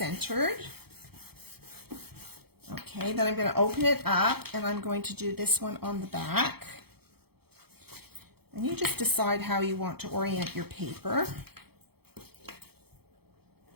Okay, then I'm going to open it up and I'm going to do this one on the back. And you just decide how you want to orient your paper.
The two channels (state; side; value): late; left; 0.96 ms